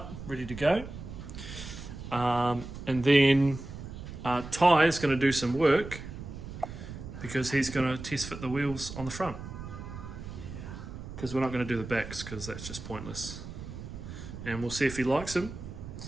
ready to go. And then Ty is going to do some work because he's going to test fit the wheels on the front. Because we're not going to do the backs because that's just pointless. And we'll see if he likes them.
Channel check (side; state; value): right; noise; rumble, 10 dB below the sound